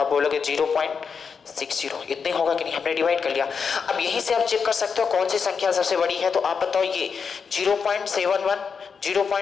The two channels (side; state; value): right; quieter; 6.0 dB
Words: बोलोगे 0.60। इतने होगा कि नहीं, हमने डिवाइड कर लिया। अब यहीं से आप चेक कर सकते हो कौन सी संख्या सबसे बड़ी है। तो आप बताओ ये 0.71,